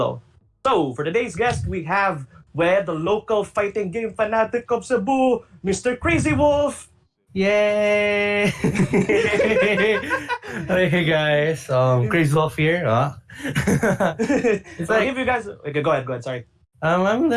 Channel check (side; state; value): both; identical; correlation 1.00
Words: So, for today's guest, we have the local fighting game fanatic of Cebu, Mr. Krazywolf. Yay! Hey guys, Krazywolf here. It's like, if you guys, okay, go ahead. Sorry.